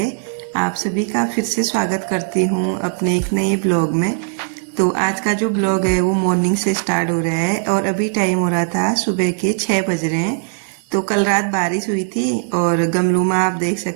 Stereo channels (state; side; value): silent; left; 62 dB below the other